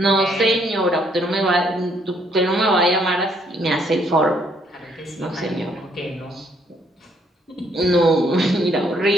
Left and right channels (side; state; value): both; normal; correlation 0.68